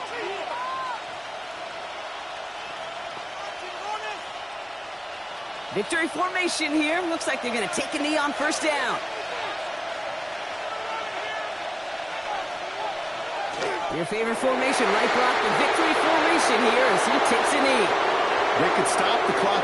Victory formation here. Looks like they're going to take a knee on first down. Your favorite formation, right, Brock? The victory formation here as he takes a knee. They could stop the clock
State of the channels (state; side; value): identical; both; correlation 1.00